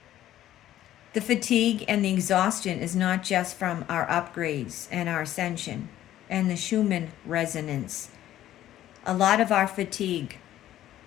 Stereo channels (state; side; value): quieter; right; 12.9 dB